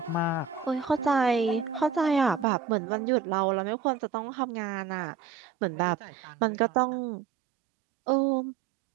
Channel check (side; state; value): left; drops out; at 2.5 s